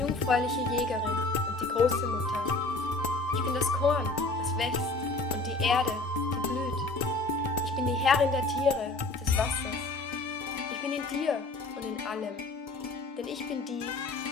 jungfräuliche Jägerin und die große Mutter. Ich bin das Korn, das wächst, und die Erde, die blüht. Ich bin die Herrin der Tiere, des Wassers. Ich bin in dir und in allem, denn ich bin die,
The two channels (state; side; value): quieter; right; 3.1 dB